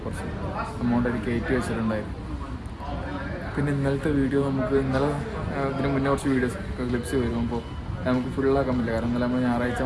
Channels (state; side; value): identical; both; correlation 1.00